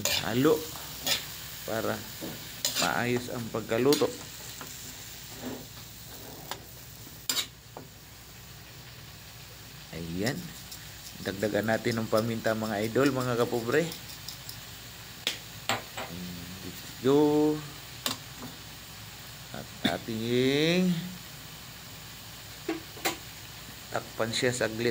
halo para maayos ang pagkaluto. Ayan, dagdagan natin ng paminta mga idol, mga kapobre. Let's go. At ating takpan siya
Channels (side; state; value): both; identical; correlation 1.00